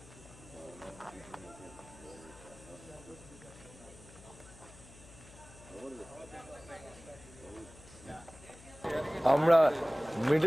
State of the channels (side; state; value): left; noise; hum, 20 dB below the sound